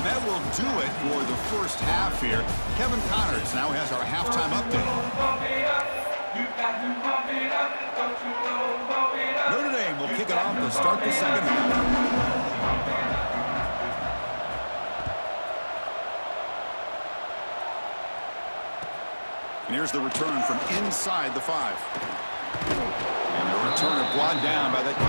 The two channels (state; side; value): inverted; both; correlation -1.00